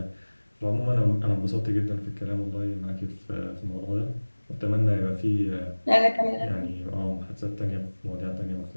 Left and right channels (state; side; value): inverted; both; correlation -1.00